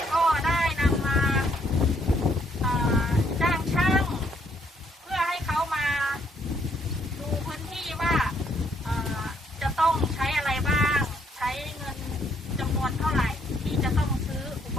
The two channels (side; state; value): both; normal; correlation 0.70